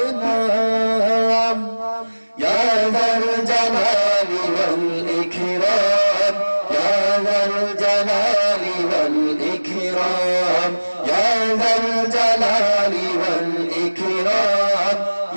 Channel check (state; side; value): inverted; both; correlation -1.00